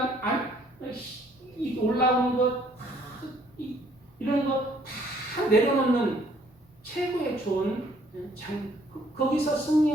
올라오는 것, 이런 거 다 내려놓는 최고의 좋은 장, 거기서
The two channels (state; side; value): normal; both; correlation 0.63